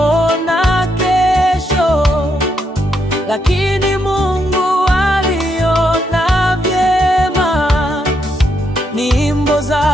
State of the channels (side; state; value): both; normal; correlation 0.78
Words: kesho, lakini Mungu aliona vyema. Nyimbo